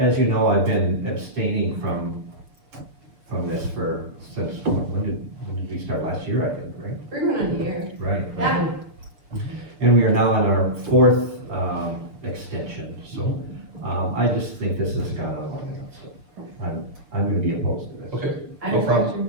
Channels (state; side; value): late; left; 6.7 ms